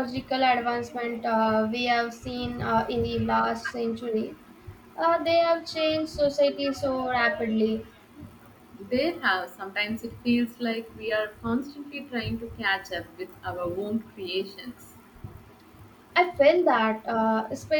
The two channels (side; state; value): both; identical; correlation 1.00